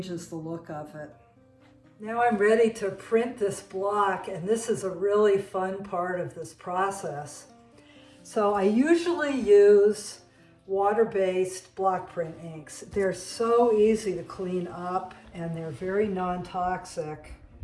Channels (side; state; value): both; identical; correlation 1.00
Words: the look of it. Now I'm ready to print this block, and this is a really fun part of this process. So I usually use water-based block print inks. They're so easy to clean up and they're very non-toxic.